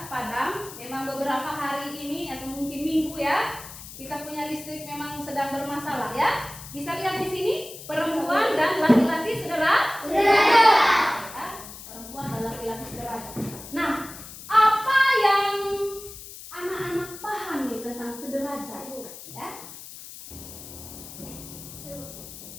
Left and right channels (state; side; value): noise; left; hiss, 14 dB below the sound